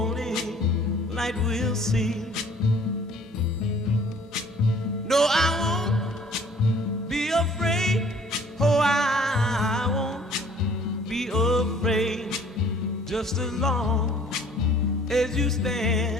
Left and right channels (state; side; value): normal; both; correlation 0.54